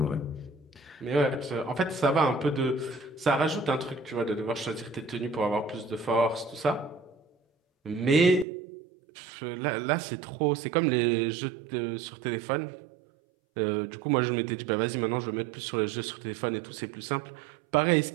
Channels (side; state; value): left; drops out; at 8.5 s